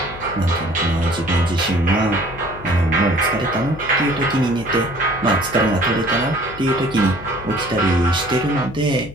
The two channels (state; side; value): noise; left; hum, 15 dB below the sound